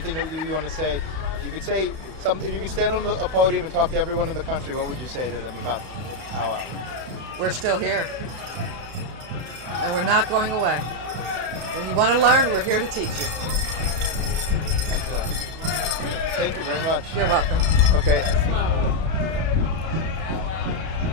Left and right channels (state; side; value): late; left; 32 ms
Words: that you want to say? You could say something. If you could stand on a podium and talk to everyone in the country, what would you say to them about powwow? We're still here, and we're not going away. When you want to learn, we're here to teach you. Excellent. Thank you very much. You're welcome. Okay.